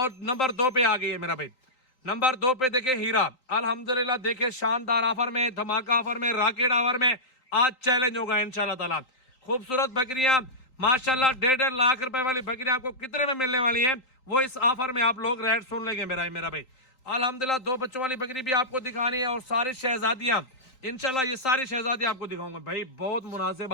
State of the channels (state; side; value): late; right; 3.8 ms